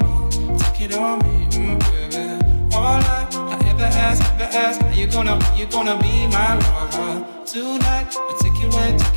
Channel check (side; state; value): both; inverted; correlation -1.00